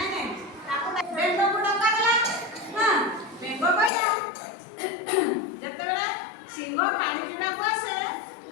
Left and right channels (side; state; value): right; drops out; at 3.9 s